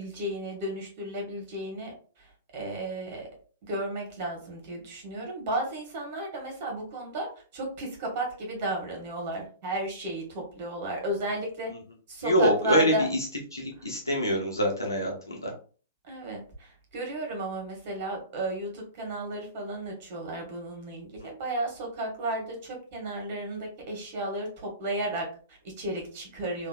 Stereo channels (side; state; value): both; inverted; correlation -0.36